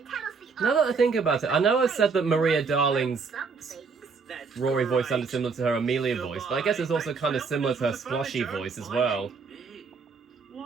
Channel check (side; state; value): left; quieter; 5.0 dB